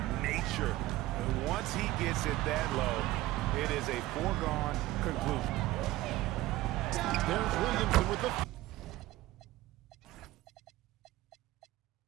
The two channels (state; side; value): quieter; left; 16.7 dB